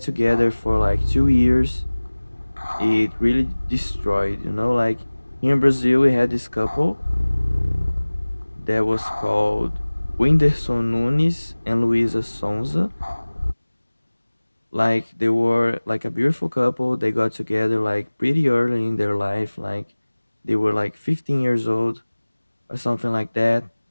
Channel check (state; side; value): inverted; both; correlation -1.00